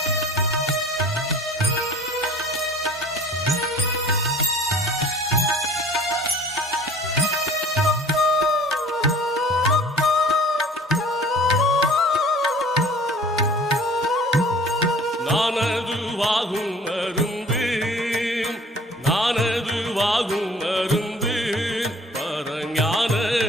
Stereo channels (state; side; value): normal; both; correlation 0.48